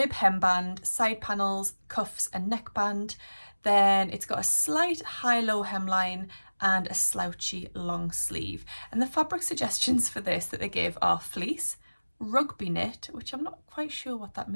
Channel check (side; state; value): both; inverted; correlation -1.00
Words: hemband, side panels, cuffs and neckband. Then it's got a slight high-low hemline and a slouchy long sleeve. And the fabric suggestions for this that they give are fleece, rugby knit, which I'm not quite sure what that